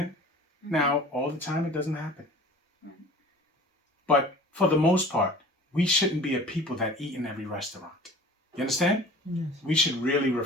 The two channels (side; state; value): both; normal; correlation 0.43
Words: Now, all the time it doesn't happen. But for the most part, we shouldn't be a people that eat in every restaurant. You understand? Yes. We should really